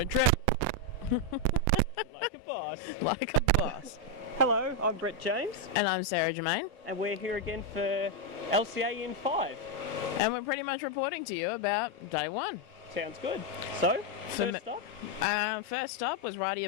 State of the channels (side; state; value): both; normal; correlation 0.02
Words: trip. Like a boss. Like a boss. Hello, I'm Brett James. And I'm Sarah Germain. And we're here again for LCA in 5. And we're pretty much reporting to you about day one. Sounds good. So, first up was